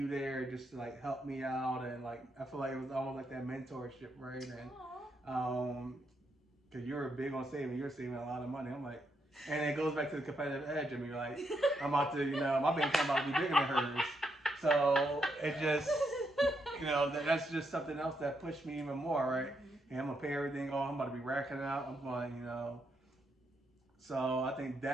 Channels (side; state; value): both; normal; correlation 0.79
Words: there just to like help me out and like I feel like it was almost like that mentorship, right? And Aw. because you were big on saving, you're saving a lot of money. I'm like, and it goes back to the competitive edge. I mean, you're like, I'm about to, my bank account about to be bigger than hers. So it just, that's just something else that pushed me even more, right? Mhm. And I'm gonna pay everything off. I'm about to be racking it out. I'm going, So I think